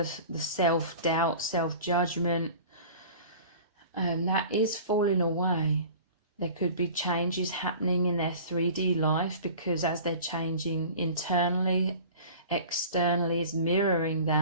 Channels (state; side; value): inverted; both; correlation -0.42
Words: self-doubt, self-judgment, and that is falling away. There could be changes happening in their 3D life because as they're changing internally, externally is mirroring